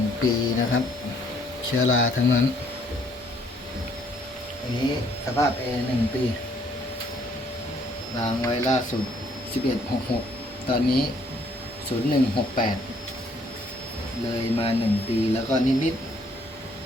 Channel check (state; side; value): normal; both; correlation 0.65